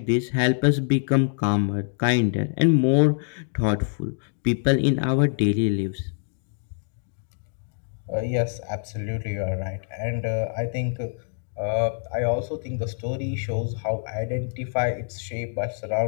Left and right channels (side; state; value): right; silent; 62 dB below the other